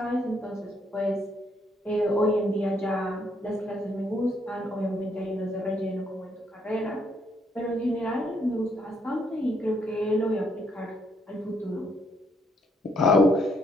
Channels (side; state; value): both; normal; correlation 0.71